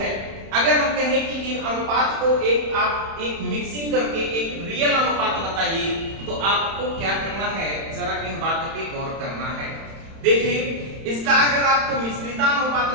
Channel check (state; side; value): late; left; 31 ms